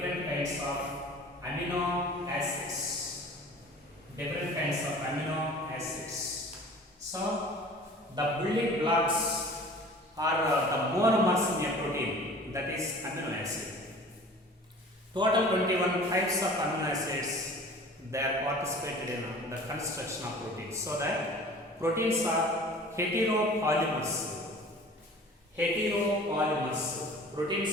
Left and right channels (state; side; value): normal; both; correlation 0.44